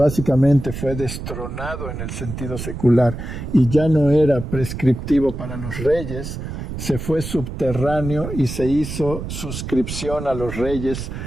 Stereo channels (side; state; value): right; noise; rumble, 7 dB below the sound